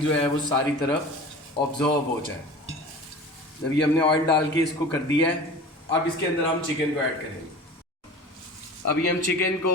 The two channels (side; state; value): both; normal; correlation 0.38